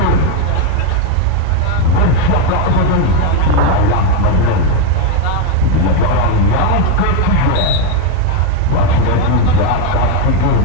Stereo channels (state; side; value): different; both; correlation 0.02